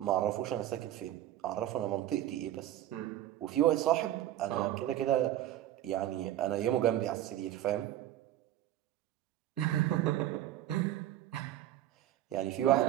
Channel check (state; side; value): quieter; left; 13.0 dB